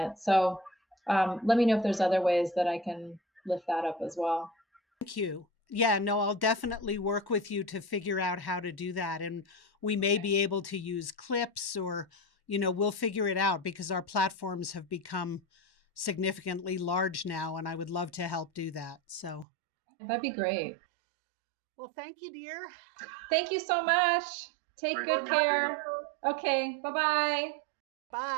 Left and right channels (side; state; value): left; drops out; at 19.5 s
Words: So let me know if there's other ways that I can lift that up as well. Thank you. Yeah, no, I'll definitely work with you to figure out how to do that. And we may be able to use clips or, we'll figure it out because our platforms have become significantly large now. And I would love to help do that. So, That'd be great. well, thank you, dear. Thank you so much. Take good care. Okay, bye bye.